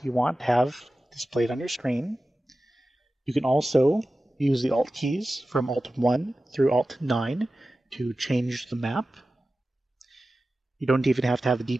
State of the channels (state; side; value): normal; both; correlation 0.95